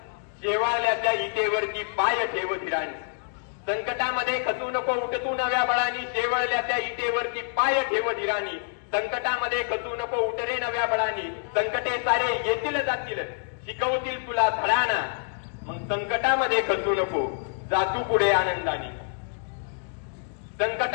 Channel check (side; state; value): right; silent; digital silence